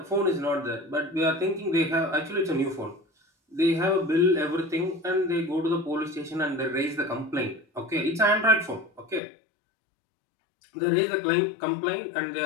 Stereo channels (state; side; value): drops out; right; at 9.2 s